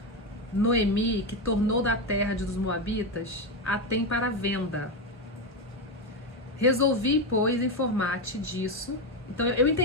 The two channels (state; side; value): normal; both; correlation 0.11